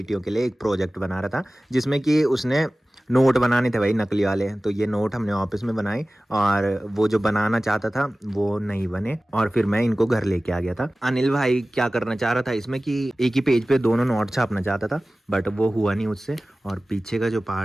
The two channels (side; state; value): both; normal; correlation 0.97